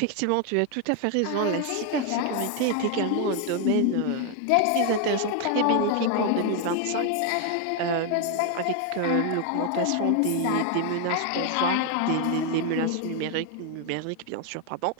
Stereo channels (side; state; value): both; different; correlation 0.01